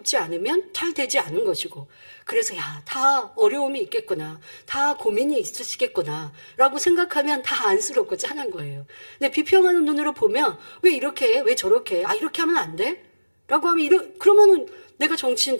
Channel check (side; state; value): both; inverted; correlation -1.00